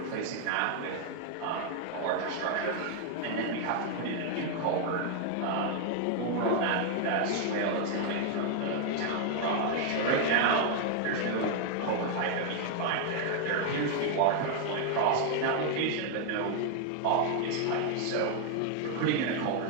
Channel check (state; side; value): different; both; correlation 0.00